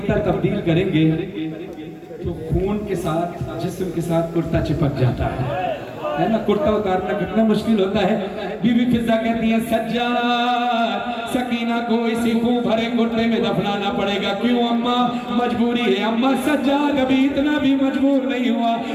तब्दील करेंगे तो खून के साथ, जिस्म के साथ कुर्ता चिपक जाता है ना। कुर्ता उतारना कितना मुश्किल होता है। बीबी फिजा कहती है सज्जाद, सकीना को इसी खून भरे कुर्ते में दफनाना पड़ेगा। क्यों अम्मा? मजबूरी है अम्मा। सज्जाद अभी इतना भी मजबूर नहीं हुआ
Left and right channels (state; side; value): identical; both; correlation 1.00